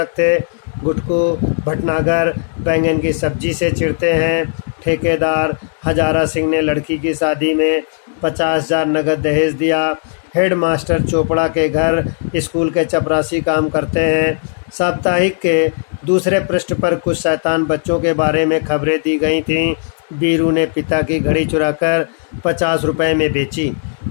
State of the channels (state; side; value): silent; right; digital silence